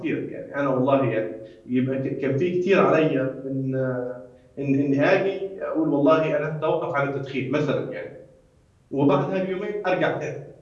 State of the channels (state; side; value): identical; both; correlation 1.00